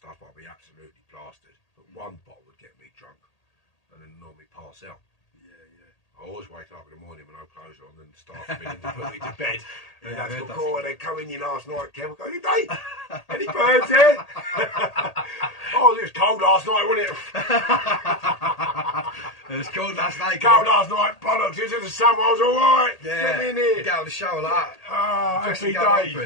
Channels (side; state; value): right; late; 1.8 ms